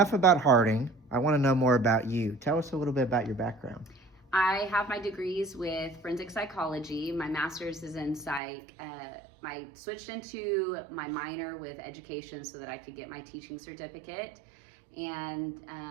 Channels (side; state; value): left; drops out; at 8.4 s